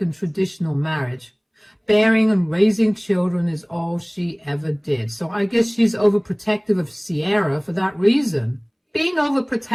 and traditional marriage. Bearing and raising children is all she ever did. So I guess she's overprotective of Sierra for that reason. Being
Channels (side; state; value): both; identical; correlation 1.00